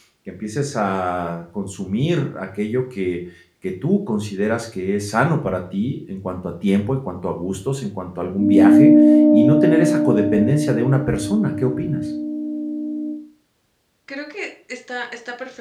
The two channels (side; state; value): both; identical; correlation 1.00